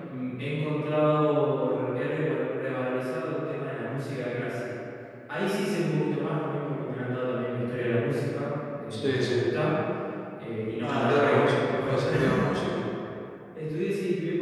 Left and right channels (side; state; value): both; identical; correlation 1.00